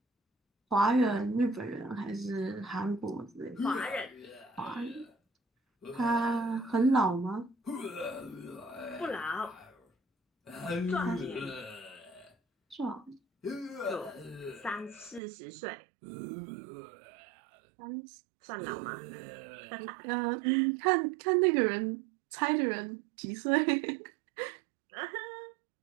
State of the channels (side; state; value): left; drops out; at 15.2 s